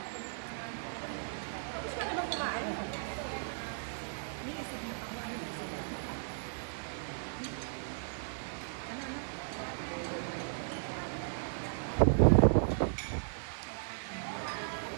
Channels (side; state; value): left; silent; digital silence